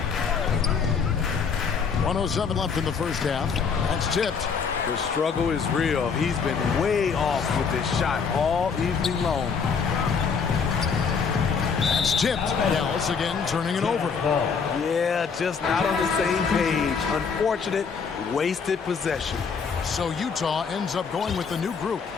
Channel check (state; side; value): quieter; right; 5.9 dB